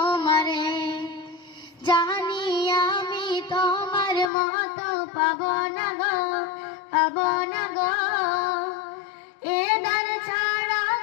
জানি আমি তোমার মতো পাবো না গো এ দ্বার ছাড়া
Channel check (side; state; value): right; drops out; at 4.3 s